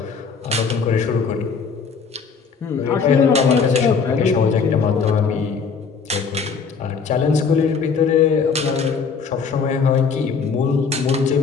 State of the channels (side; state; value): right; quieter; 5.6 dB